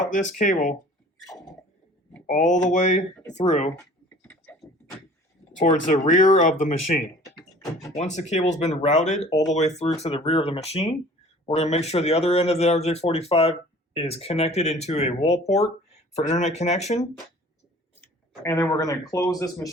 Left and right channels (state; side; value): normal; both; correlation 0.48